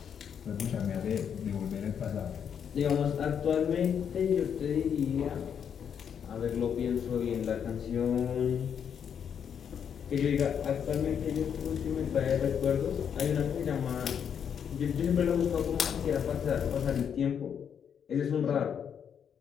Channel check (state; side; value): quieter; right; 7.9 dB